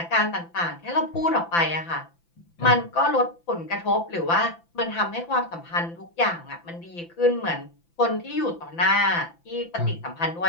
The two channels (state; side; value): late; right; 5.9 ms